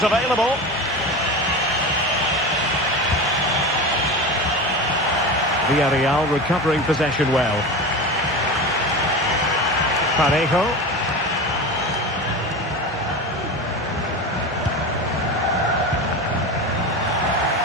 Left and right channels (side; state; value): both; normal; correlation 0.26